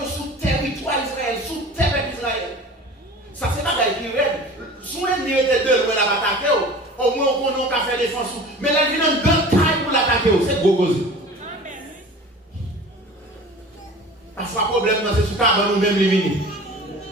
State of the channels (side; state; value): both; normal; correlation 0.40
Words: sous territoire Israël, sous terre d'Israël. Ça, c'est pas qui raide. Sous l'ennemi était deux, on a attaqué. Au moins, on a fait défense. Mais là, il y a un grand taille pour l'attaquer. C'est gros gros. Parfois, le problème, c'est sous cabane nous-mêmes les vignes.